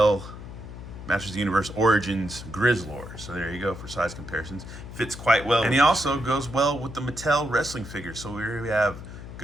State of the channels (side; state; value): left; noise; hum, 12 dB below the sound